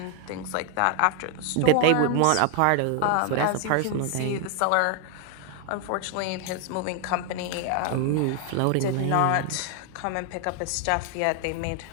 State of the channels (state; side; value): different; both; correlation 0.00